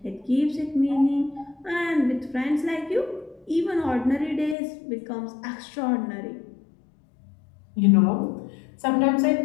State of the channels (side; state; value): right; drops out; at 4.5 s